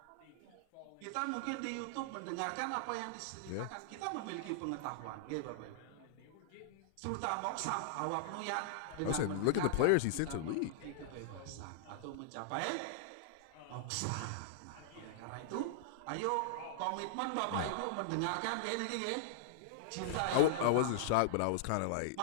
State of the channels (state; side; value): different; both; correlation -0.01